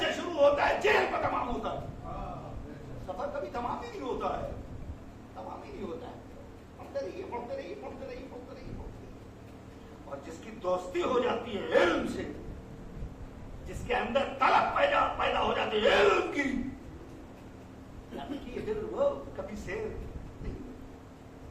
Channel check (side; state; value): both; identical; correlation 1.00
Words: سے شروع ہوتا ہے، جیل پر تمام ہوتا ہے. سفر کبھی تمام ہی نہیں ہوتا ہے، تمام ہی نہیں ہوتا ہے. پڑھتے رہیے پڑھتے رہیے پڑھتے رہیے پڑھتے رہیے پڑھتے رہیے. اور جس کی دوستی ہو جاتی ہے علم سے، جس کے اندر طلب پیدا ہو جاتی ہے علم کی، پھر وہ کبھی سیر نہیں.